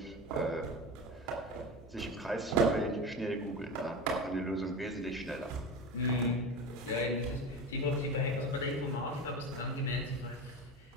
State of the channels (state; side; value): normal; both; correlation 0.26